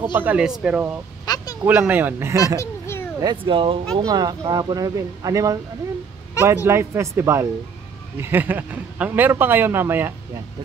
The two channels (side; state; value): left; quieter; 6.1 dB